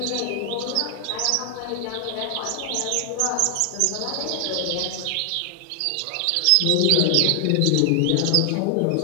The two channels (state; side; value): different; both; correlation 0.00